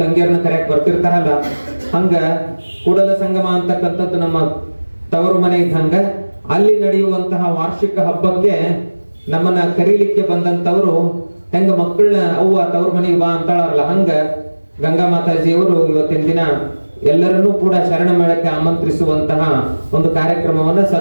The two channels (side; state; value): both; inverted; correlation -1.00